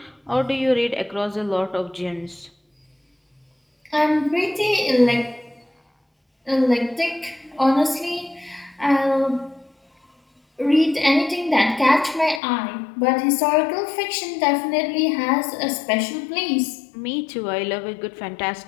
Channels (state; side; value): drops out; right; at 12.4 s